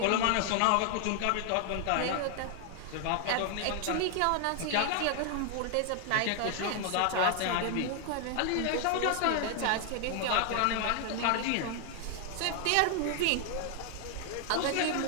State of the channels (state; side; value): different; both; correlation 0.00